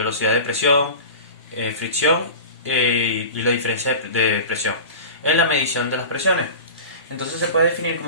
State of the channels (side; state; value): both; inverted; correlation -0.34